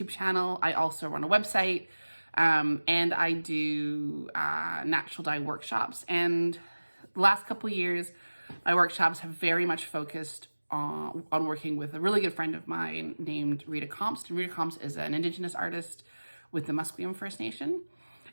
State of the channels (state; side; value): inverted; both; correlation -1.00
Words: channel, I also run a website, and I do natural dye workshops. And the last couple of years, my workshops have very much focused on working with a really good friend of mine named Rita Comst. And Rita Comst is an Indigenous artist with the Musqueam First Nation.